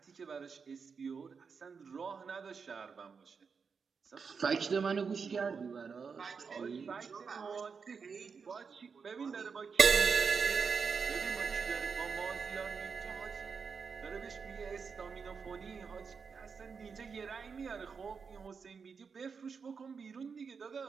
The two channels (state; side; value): quieter; left; 5.6 dB